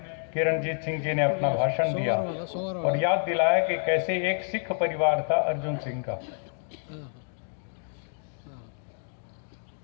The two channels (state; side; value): silent; right; 57 dB below the other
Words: किरणजीत सिंह जी ने अपना भाषण दिया और याद दिलाया कि कैसे एक सिख परिवार था अर्जुन सिंह का।